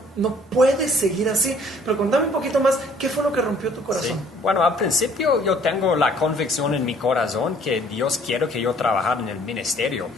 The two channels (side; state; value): both; normal; correlation 0.58